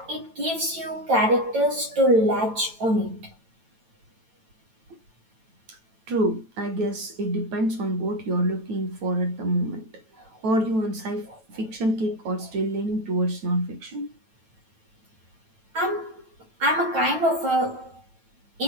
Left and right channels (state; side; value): late; left; 9.1 ms